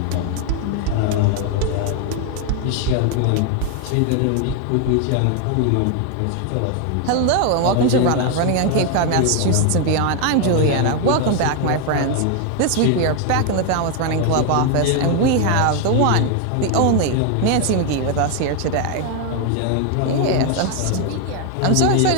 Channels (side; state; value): both; different; correlation 0.01